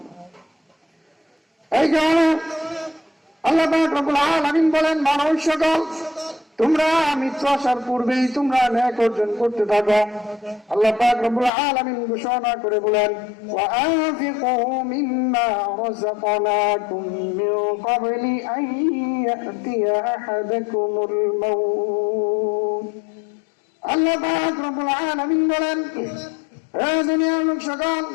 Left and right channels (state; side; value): drops out; right; at 11.5 s